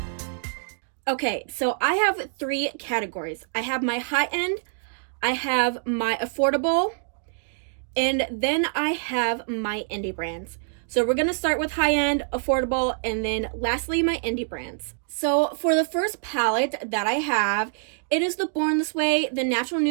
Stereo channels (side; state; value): left; silent; digital silence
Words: Okay, so I have three categories. I have my high-end, I have my affordable, and then I have my indie brands. So we're gonna start with high-end, affordable, and then lastly, my indie brands. So for the first palette that I have, it is the Born This Way, the Natural